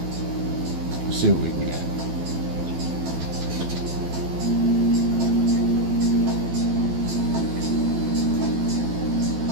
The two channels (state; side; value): late; left; 12 ms